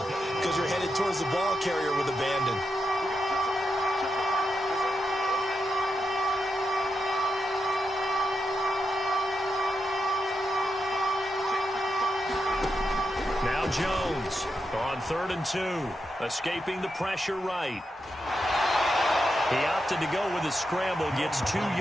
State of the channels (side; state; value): both; normal; correlation 0.86